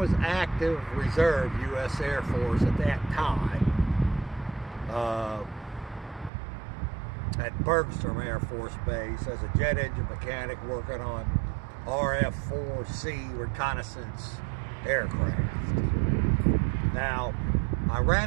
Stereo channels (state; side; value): drops out; left; at 6.3 s